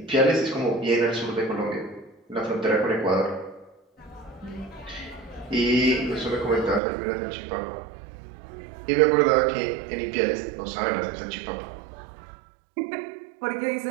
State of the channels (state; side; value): drops out; left; at 6.8 s